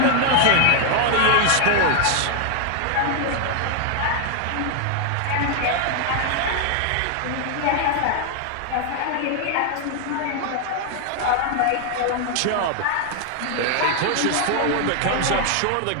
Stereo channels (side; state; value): both; different; correlation 0.00